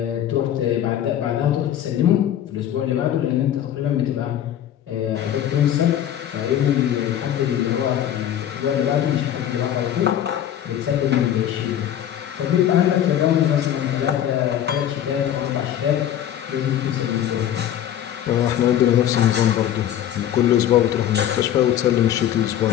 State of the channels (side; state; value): right; quieter; 10.9 dB